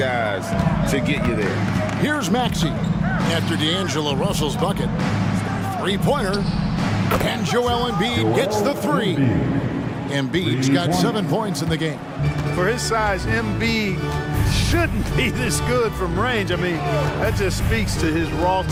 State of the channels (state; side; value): identical; both; correlation 1.00